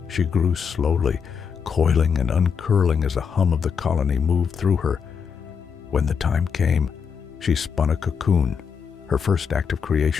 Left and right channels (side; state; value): right; quieter; 6.5 dB